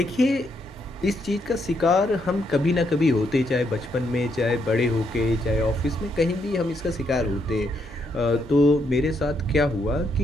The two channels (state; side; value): normal; both; correlation 0.76